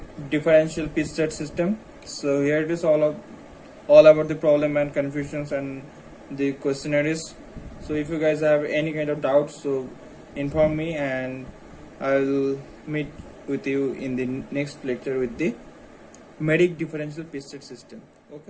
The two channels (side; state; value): both; identical; correlation 1.00